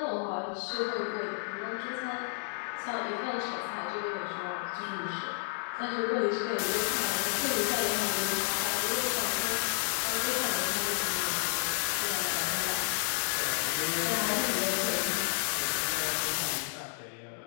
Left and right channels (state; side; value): silent; right; 57 dB below the other